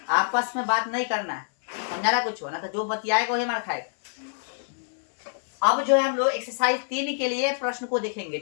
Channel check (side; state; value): right; silent; 61 dB below the other